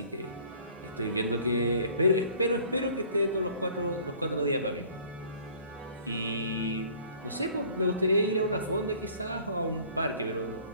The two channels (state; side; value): inverted; both; correlation -0.52